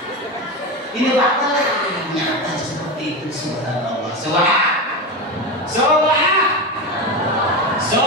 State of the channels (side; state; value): both; normal; correlation 0.18